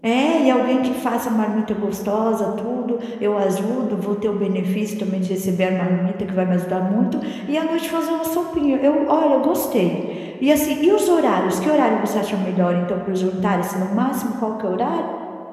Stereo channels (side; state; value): both; identical; correlation 1.00